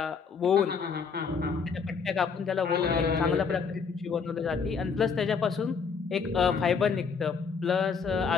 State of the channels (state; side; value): quieter; right; 5.7 dB